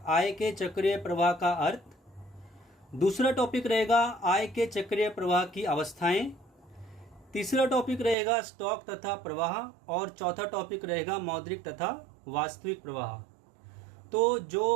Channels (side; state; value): left; drops out; at 8.2 s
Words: आय के चक्रीय प्रवाह का अर्थ। दूसरा टॉपिक रहेगा आय के चक्रीय प्रवाह की अवस्थाएं। तीसरा टॉपिक रहेगा स्टॉक तथा प्रवाह और चौथा टॉपिक रहेगा मौद्रिक तथा वास्तविक प्रवाह। तो